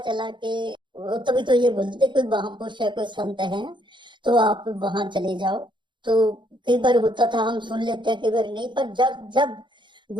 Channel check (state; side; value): late; left; 0.23 ms